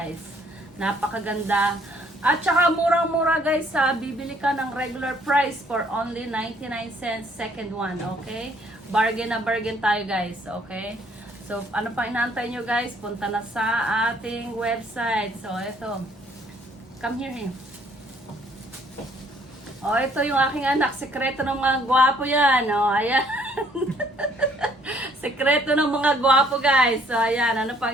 napakaganda. At saka murang-mura guys, bibili ka ng regular price for only 99 cents second one, okay? Bargain na bargain tayo guys, okay? So ano pa inaantay nyo guys? Punta na sa ating website. So ito, come here. Oh, ito yung aking anak. Sekreto ng mga gwapo yan. Oh, ayan. Sekreto ng mga gwapo, guys. So, ayan. Ano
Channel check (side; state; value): both; normal; correlation 0.63